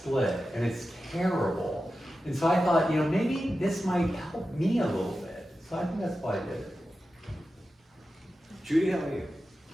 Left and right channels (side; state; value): both; normal; correlation 0.92